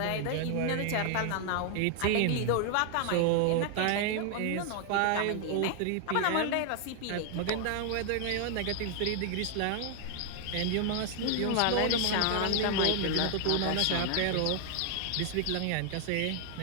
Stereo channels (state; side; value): different; both; correlation 0.00